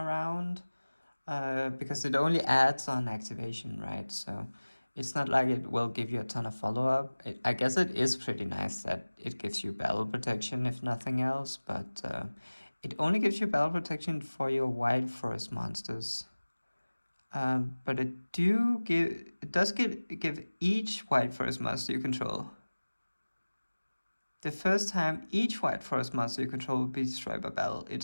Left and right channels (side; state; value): both; inverted; correlation -1.00